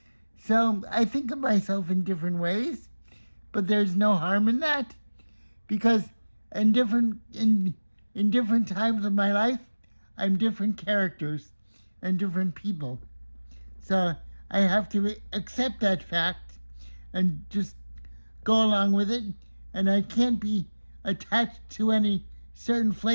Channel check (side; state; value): both; inverted; correlation -1.00